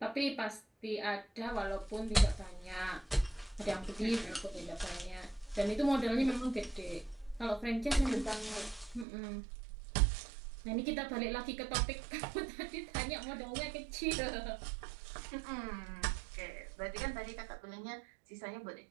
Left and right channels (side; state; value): left; drops out; at 9.1 s